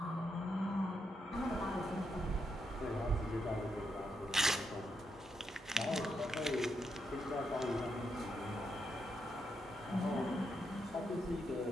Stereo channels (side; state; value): both; normal; correlation 0.81